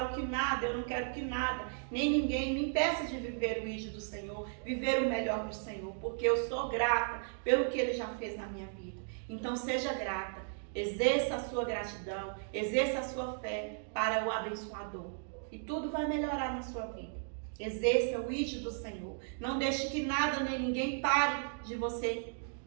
que nada, eu não quero que nada, nem ninguém me impeça de viver o ídolo do Senhor, viver o melhor do Senhor, porque eu sou grata pelo que Ele já fez na minha vida. Então seja grata, exerça a sua gratidão, exerça a sua fé para o abençoador. E tudo vai melhorar na sua vida. Exerça o ídolo do Senhor. Não deixe que nada nem ninguém pare de você,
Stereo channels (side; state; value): left; silent; digital silence